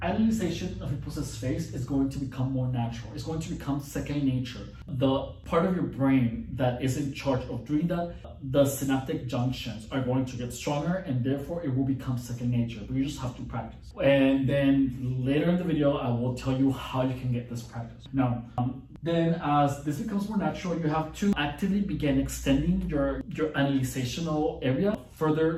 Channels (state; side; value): identical; both; correlation 1.00